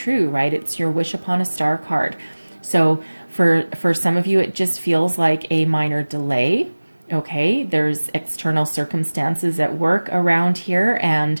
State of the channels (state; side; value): inverted; both; correlation -1.00